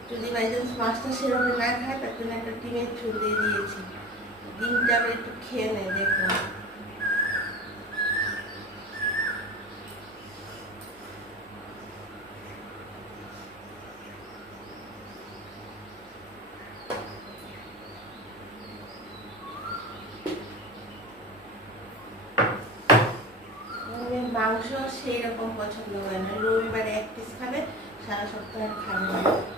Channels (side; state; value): both; normal; correlation 0.33